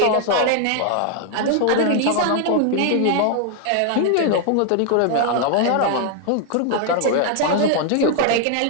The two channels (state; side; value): different; both; correlation 0.00